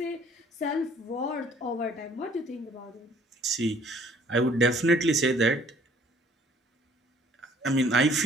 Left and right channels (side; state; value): both; normal; correlation 0.57